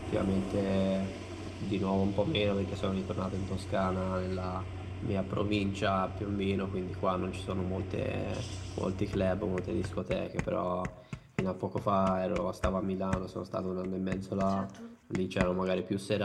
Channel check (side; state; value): both; identical; correlation 1.00